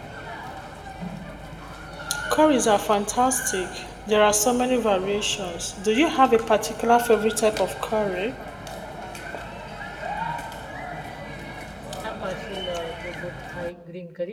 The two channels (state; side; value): identical; both; correlation 1.00